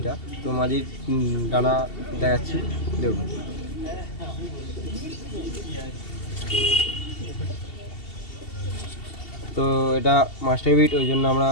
তো মাদির ডানা দেখাচ্ছি, দেখুন। তো এটা মাস্টার বিট, ওই জন্য আমরা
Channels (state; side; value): late; right; 2.7 ms